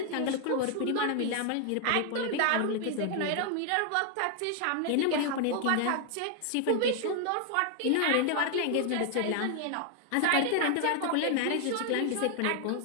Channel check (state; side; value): different; both; correlation 0.00